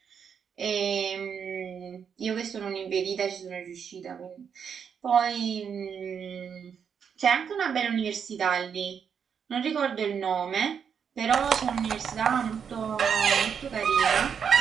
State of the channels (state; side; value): quieter; left; 7.2 dB